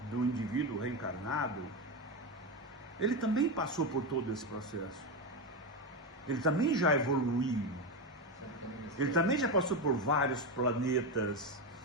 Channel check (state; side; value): normal; both; correlation 0.13